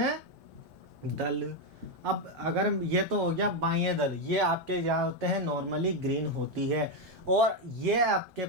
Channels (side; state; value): both; normal; correlation 0.05